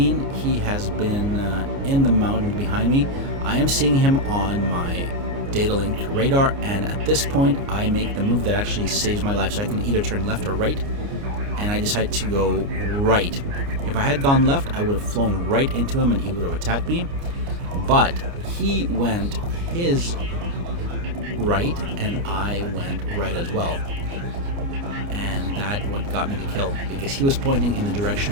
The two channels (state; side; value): late; left; 29 ms